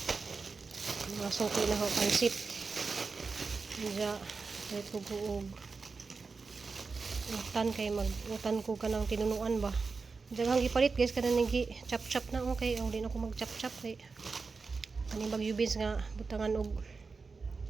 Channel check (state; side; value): quieter; left; 4.5 dB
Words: Mga sungkay na ho pansit. Diya, kahit ko buog. Utan kay mag-utan ko ka ng tinunuan ba. Diya hang ipalit guys. Kana nigi chop-chop na okay. O, di na ako mag-chop-chop kay. Kaning bagyubins nga butangan og